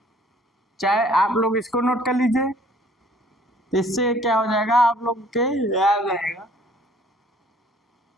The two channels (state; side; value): normal; both; correlation 0.56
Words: चाहे आप लोग इसको नोट कर लीजिए, इससे क्या हो जाएगा आप लोग के याद रहेगा।